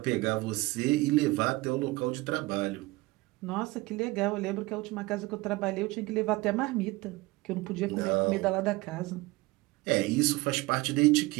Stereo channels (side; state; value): left; quieter; 21.2 dB